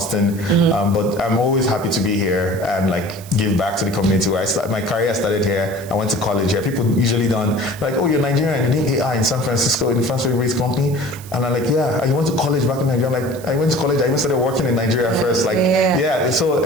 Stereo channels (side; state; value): right; noise; hiss, 18 dB below the sound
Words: but I'm always happy to be here and give back to the community. My career started here. I went to college here. People usually don't oh, you're Nigerian. You need AI in San Francisco in the Francis-based company, and I'm yeah. You went to college back in Nigeria. I'm I went to college. I even started working in Nigeria first. So